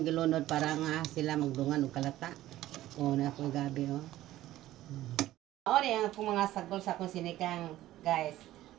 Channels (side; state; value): left; quieter; 14.8 dB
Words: para nga sila magdungan og kalata. Na ako gabi O ang akong mga sagol sa akong sinigang, guys.